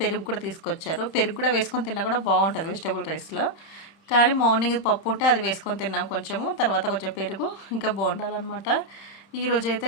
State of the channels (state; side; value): late; right; 30 ms